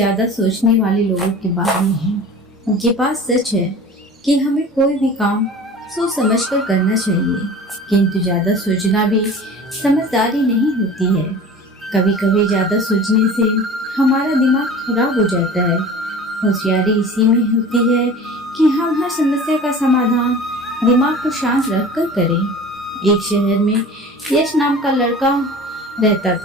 सोचने वाले लोगों के बारे में है। उनके पास सच है कि हमें कोई भी काम सोच समझ कर करना चाहिए, किंतु ज़्यादा सोचना भी समझदारी नहीं होती है। कभी कभी ज़्यादा सोचने से हमारा दिमाग खराब हो जाता है। होशियारी इसी में होती है कि हम हर समस्या का समाधान दिमाग को शांत रख कर करें। एक शहर में यश नाम का लड़का रहता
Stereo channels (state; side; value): normal; both; correlation 0.40